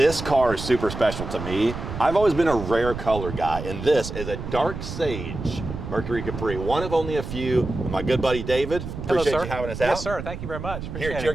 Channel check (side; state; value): right; noise; rumble, 8 dB below the sound